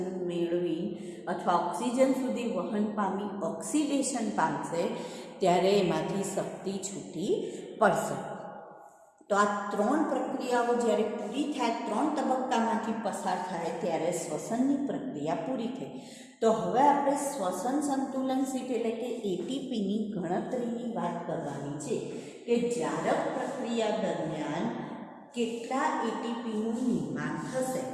મેળવી અથવા ઓક્સિજન સુધી વહન પામી ઓક્સિડેશન પામશે ત્યારે એમાંથી શક્તિ છૂટી પડશે. તો આ 3 પ્રક્રિયાઓ જ્યારે પૂરી થાય, 3 તબક્કામાંથી પસાર થાય ત્યારે શ્વસનની પ્રક્રિયા પૂરી થઈ. તો હવે આપણે શ્વસન સંતુલન શીટ એટલે કે ATPની ગણતરીની વાત કરવાની છે કે જારક પ્રક્રિયા દરમિયાન કેટલા ATPનું નિર્માણ થશે.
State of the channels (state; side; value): identical; both; correlation 1.00